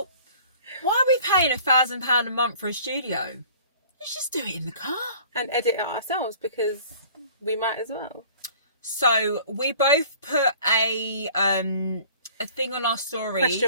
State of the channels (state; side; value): inverted; both; correlation -0.49